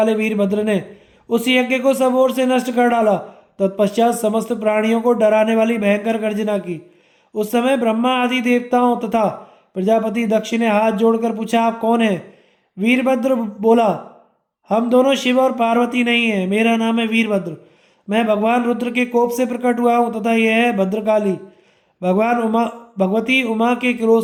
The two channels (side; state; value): both; identical; correlation 1.00